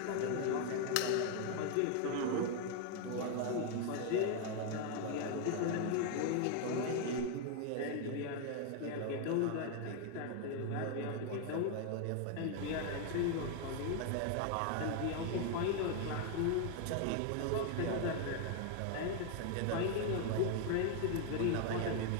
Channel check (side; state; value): both; different; correlation 0.00